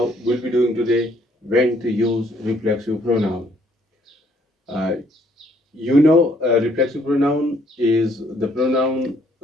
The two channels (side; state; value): both; normal; correlation 0.66